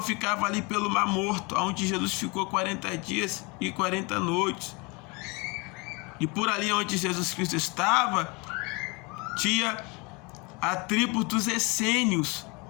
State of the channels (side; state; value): right; quieter; 28.1 dB